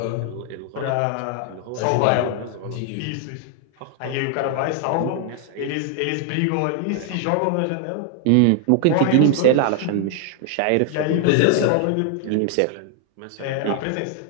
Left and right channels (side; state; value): both; different; correlation 0.00